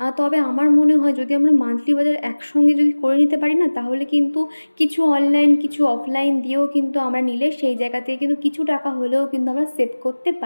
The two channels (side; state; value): both; inverted; correlation -1.00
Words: তবে আমার মনে হয় যদি আমরা মান্থলি বাজার একসঙ্গে যদি করে নিতে পারি না, তাহলে কিন্তু কিছু অনলাইন কিছু অফলাইন দিয়েও কিন্তু আমরা নিলে সেই জায়গা থেকে কিন্তু কিছু টাকা হলেও কিন্তু আমরা সেভ করতে